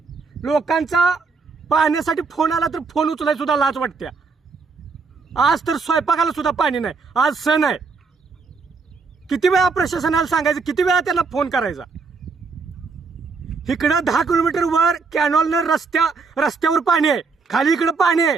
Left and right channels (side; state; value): left; quieter; 4.7 dB